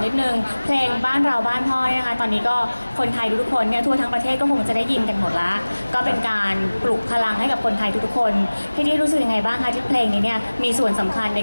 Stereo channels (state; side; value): inverted; both; correlation -1.00